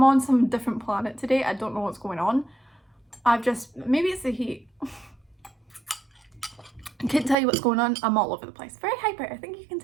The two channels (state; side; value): drops out; left; at 7.4 s